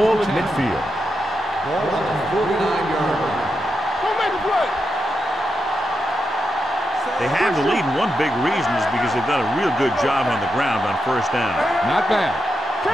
at midfield. Ball on the 49-yard line. Don't make a play. They have the lead, and one big reason is because they've done a real good job on the ground on first down. Not bad.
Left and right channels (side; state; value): both; normal; correlation 0.86